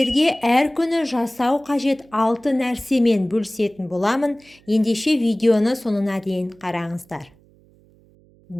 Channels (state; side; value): noise; right; hum, 30 dB below the sound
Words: әр күні жасау қажет 6 нәрсемен бөлісетін боламын. Ендеше видеоны соңына дейін қараңыздар.